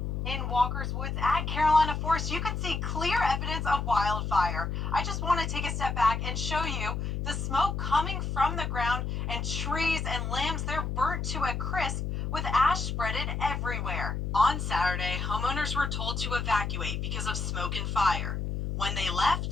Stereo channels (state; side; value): noise; left; hum, 2 dB below the sound